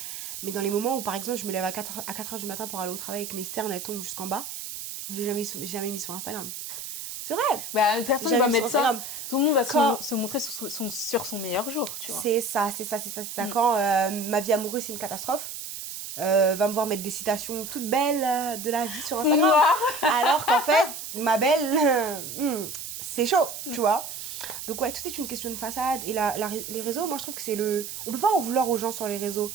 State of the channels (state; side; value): noise; right; hiss, 8 dB below the sound